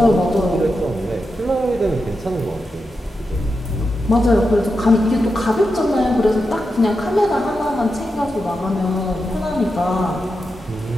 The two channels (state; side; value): normal; both; correlation 0.88